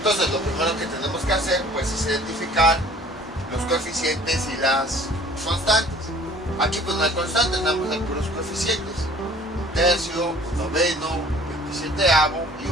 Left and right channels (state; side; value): normal; both; correlation 0.51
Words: lo primero que tenemos que hacer pues es identificar los coeficientes y las constantes. Aquí pues no hay constantes, nada más hay puros coeficientes. Un tercio, un noveno, un 27avo y